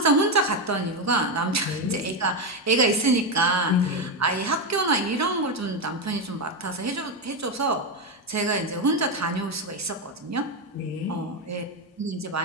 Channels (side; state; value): both; normal; correlation 0.09